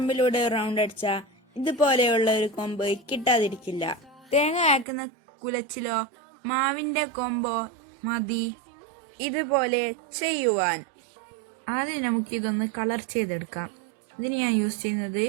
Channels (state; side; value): drops out; left; at 4.9 s